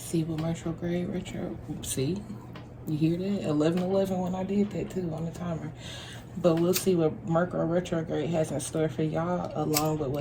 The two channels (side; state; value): both; identical; correlation 1.00